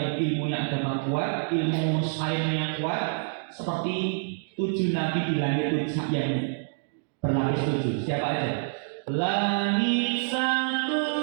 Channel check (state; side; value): silent; left; digital silence